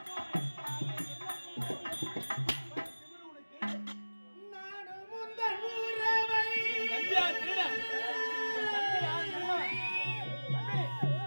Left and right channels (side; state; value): both; inverted; correlation -1.00